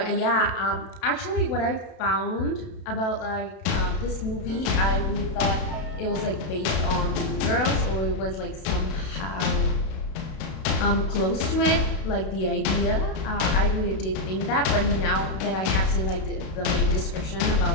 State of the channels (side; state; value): right; late; 31 ms